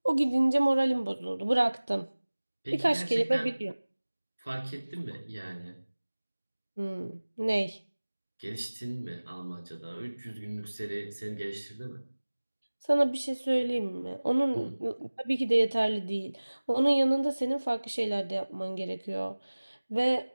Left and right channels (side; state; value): both; inverted; correlation -1.00